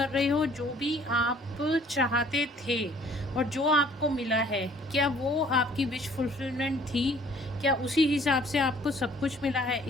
रहे हो, जो भी आप चाहते थे और जो आपको मिला है, क्या वो आपकी विश फुलफिलमेंट थी? क्या उसी हिसाब से आपको सब कुछ मिला है?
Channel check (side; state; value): both; normal; correlation 0.57